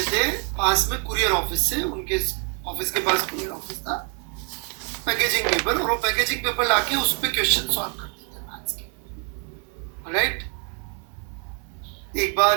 थे पास में कुरियर ऑफिस से, उनके ऑफिस के पास कुरियर ऑफिस था, पैकेजिंग पेपर, और वो पैकेजिंग पेपर लाके उस पे क्वेश्चन सॉल्व करते थे मैथ्स के, राइट। एक बार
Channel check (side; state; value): left; quieter; 39.7 dB